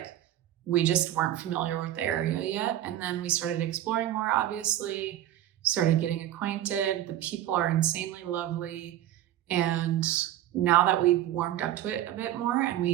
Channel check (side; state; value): left; quieter; 12.9 dB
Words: we just weren't familiar with the area yet. And then we started exploring more, obviously, started getting acquainted. The people are insanely lovely. And now that we've warmed up to it a bit more and